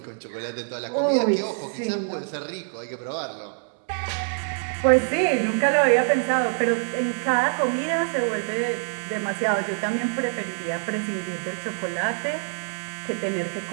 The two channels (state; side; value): silent; left; digital silence